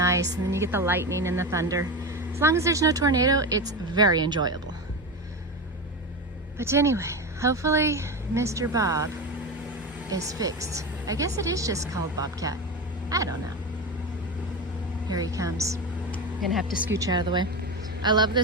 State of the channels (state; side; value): normal; both; correlation 0.21